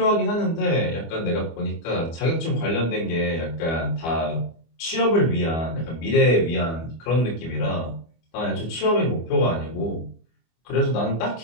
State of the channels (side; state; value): right; late; 25 ms